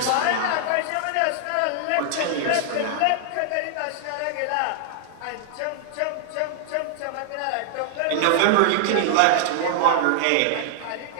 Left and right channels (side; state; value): both; different; correlation -0.01